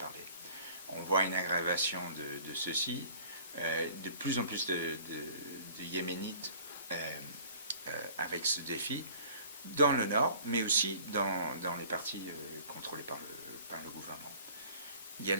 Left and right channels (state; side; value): inverted; both; correlation -0.50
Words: On voit une aggravation de ceci. De plus en plus de Yéménites avec ce défi dans le nord, mais aussi dans les parties contrôlées par le gouvernement. Il y a